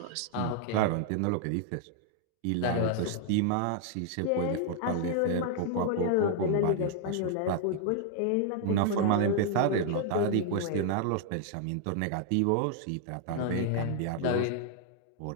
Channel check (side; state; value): both; different; correlation 0.00